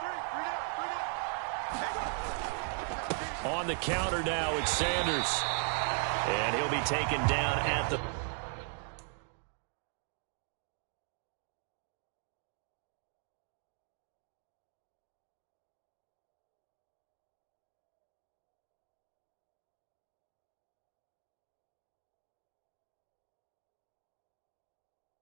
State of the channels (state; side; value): silent; left; 52 dB below the other